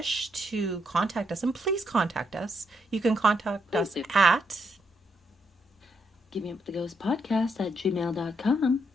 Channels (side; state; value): both; normal; correlation 0.78